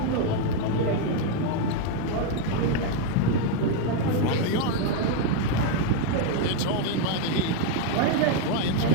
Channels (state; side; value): different; both; correlation 0.00